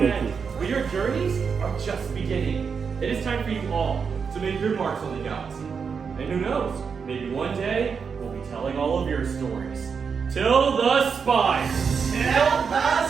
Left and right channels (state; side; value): quieter; left; 6.0 dB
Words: end. But your journeys are just beginning. It is time for you all to make your marks on the galaxy. And who knows, maybe one day we'll be telling all of your stories. Till the spire! Till the